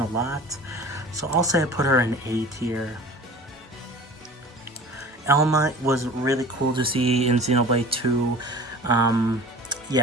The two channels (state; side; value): normal; both; correlation 0.40